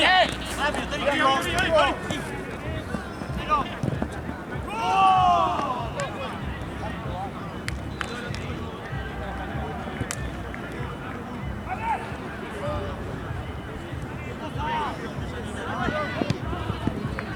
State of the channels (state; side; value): identical; both; correlation 1.00